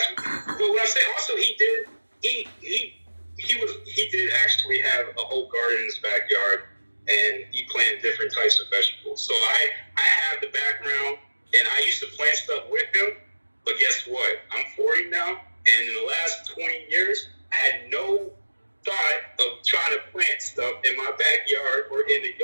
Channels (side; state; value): both; inverted; correlation -1.00